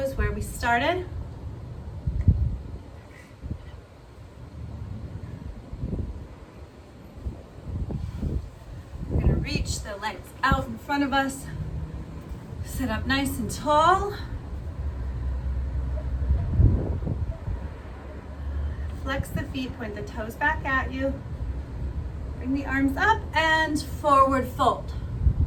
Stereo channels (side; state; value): both; identical; correlation 1.00